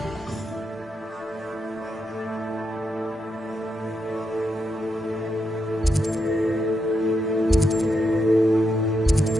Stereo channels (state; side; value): normal; both; correlation 0.83